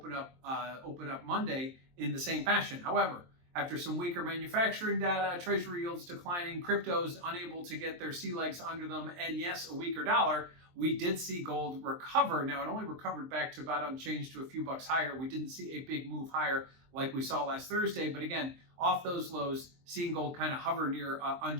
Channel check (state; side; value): late; left; 23 ms